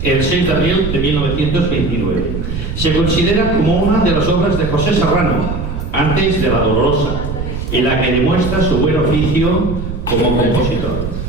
el 6 de abril de 1929. Se considera como una de las obras de José Serrano, antes de La Dolorosa, en la que demuestra su buen oficio como compositor.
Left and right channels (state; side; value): noise; right; rumble, 5 dB below the sound